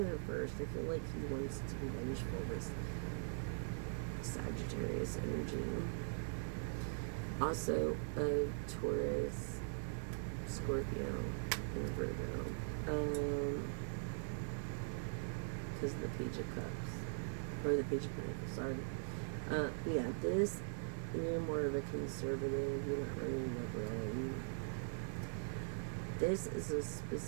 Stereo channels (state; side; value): silent; left; digital silence